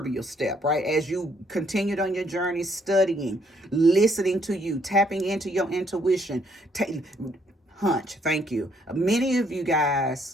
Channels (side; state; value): both; normal; correlation 0.68